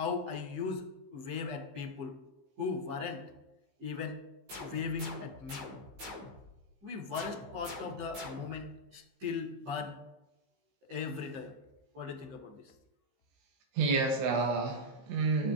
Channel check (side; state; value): left; late; 15 ms